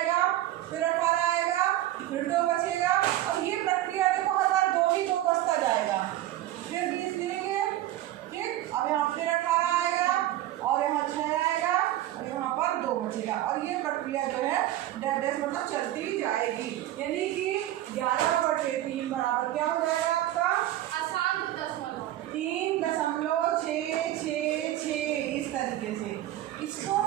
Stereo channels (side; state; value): left; quieter; 14.1 dB